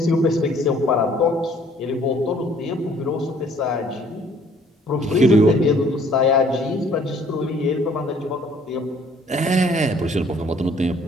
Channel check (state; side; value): normal; both; correlation 0.59